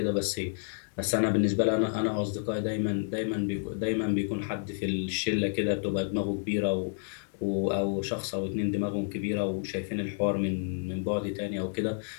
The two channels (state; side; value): silent; right; digital silence